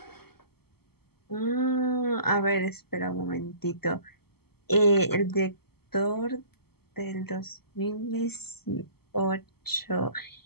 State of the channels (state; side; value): late; right; 0.96 ms